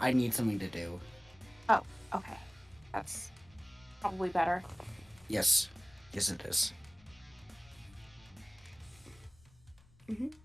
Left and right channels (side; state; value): left; noise; rumble, 26 dB below the sound